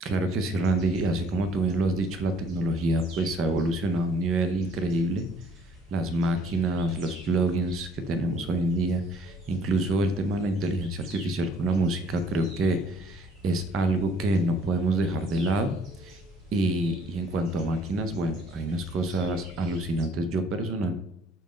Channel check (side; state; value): both; normal; correlation 0.59